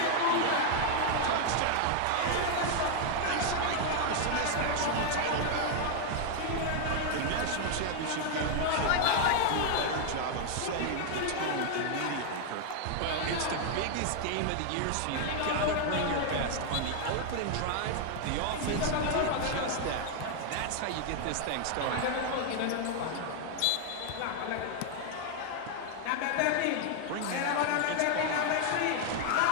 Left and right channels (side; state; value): both; different; correlation 0.00